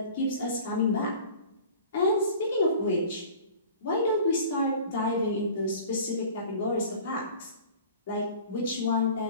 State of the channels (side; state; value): both; inverted; correlation -0.44